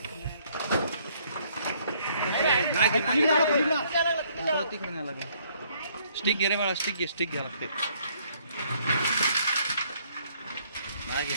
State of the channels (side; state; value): both; inverted; correlation -0.65